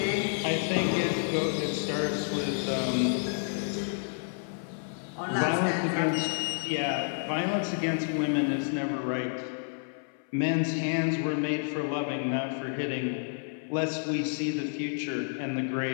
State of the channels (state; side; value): silent; right; 58 dB below the other